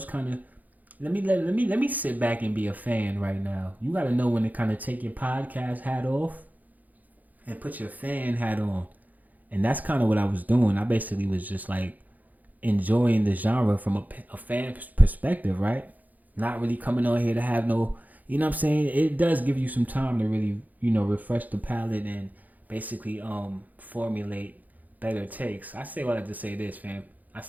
kind of let me sit back and be a fan right now. You got to know when to kind of take your podcast hat off and put your fan hat on, and that's kind of what I was doing. I basically was just like enjoying the genre from a fan perspective, right? Not really coming on here to have no, you know what I'm saying? It does give you some time to really, refresh the palate and basically formulate better takes. I say all that to say this, fam.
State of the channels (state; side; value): late; left; 0.081 ms